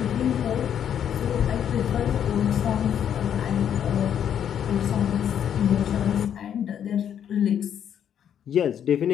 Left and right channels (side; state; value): right; quieter; 9.1 dB